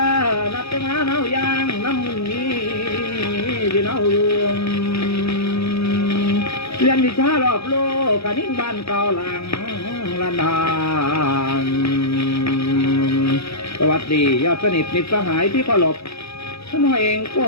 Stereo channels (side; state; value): right; late; 0.79 ms